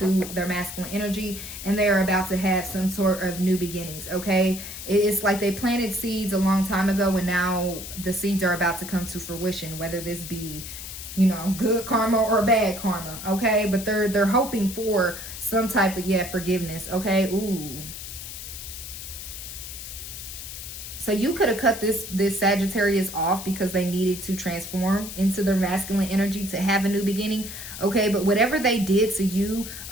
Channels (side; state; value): left; noise; hiss, 10 dB below the sound